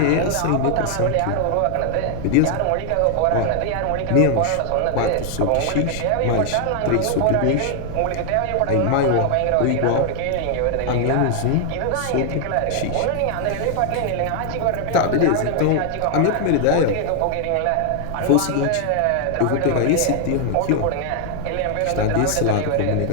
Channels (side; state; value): both; different; correlation 0.00